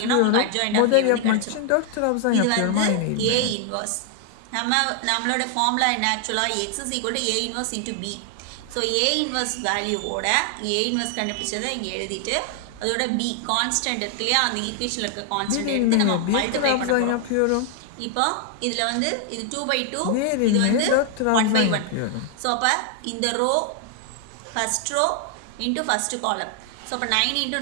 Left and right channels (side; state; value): both; different; correlation 0.00